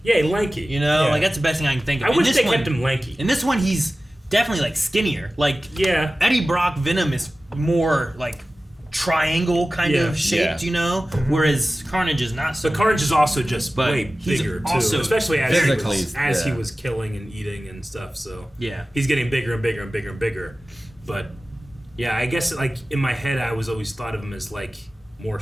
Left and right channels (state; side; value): normal; both; correlation 0.96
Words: Yeah, lanky. You know? Like, that's the best thing I can think of. I wish they kept him lanky. In this one, he's definitely, like, skinnier. Like, Eddie Brock Venom is more, like, triangle kind of shaped, you know? Whereas Carnage is not so. But Carnage is also just way he's bigger, too. also Especially physically, as he was killing and eating and stuff, so... Yeah. He's getting bigger and bigger and bigger and bigger. But, yeah, I guess, like, in my head, I was always thought of him as, like, more